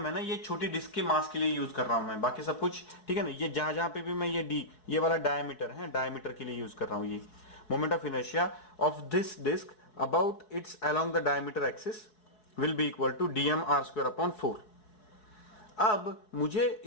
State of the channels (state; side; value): late; right; 4.7 ms